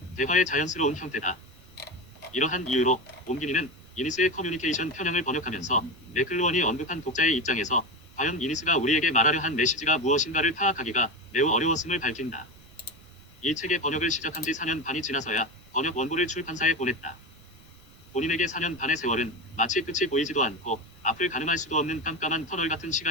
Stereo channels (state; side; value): noise; right; rumble, 26 dB below the sound